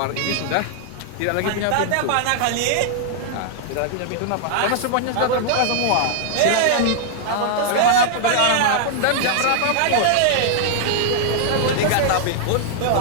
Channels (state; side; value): different; both; correlation -0.01